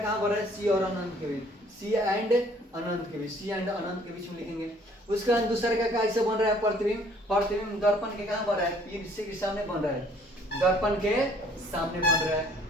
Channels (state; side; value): normal; both; correlation 0.59